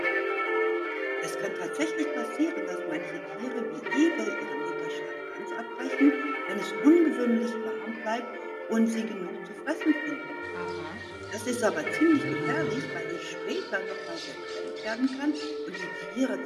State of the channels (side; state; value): both; identical; correlation 1.00